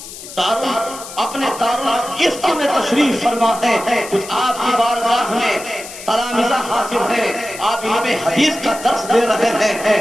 اپنے دارالفتہ میں تشریف فرما ہے۔ کچھ آپ کی بارگاہ میں تلامذہ حاضر ہیں، آپ علم حدیث کا درس دے رہے ہیں۔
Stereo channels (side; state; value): left; noise; hiss, 13 dB below the sound